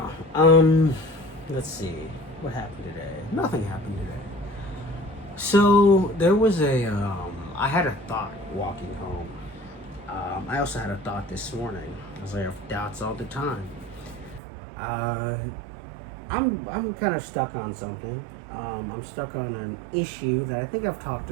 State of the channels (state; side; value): drops out; left; at 14.4 s